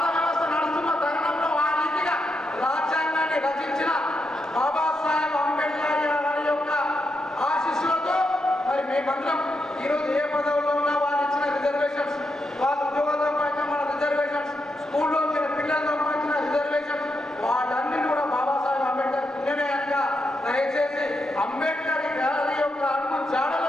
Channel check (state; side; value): normal; both; correlation 0.83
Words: ఈరోజు ఏ పదవుల్లో ఉన్నా వాళ్ళు ఇచ్చిన రిజర్వేషన్స్, వాళ్ళ ఉద్యోగాలతో పాటు మన రిజర్వేషన్స్, స్కూల్లో వచ్చిన పిల్లలతో వచ్చిన రిజర్వేషన్స్, వాళ్ళన్నీ కూడా బాబాసాహెబ్ అంబేద్కర్ పుణ్యమేయంగా దయచేసి అంబేద్కర్ గారి యొక్క అడుగు జాడలో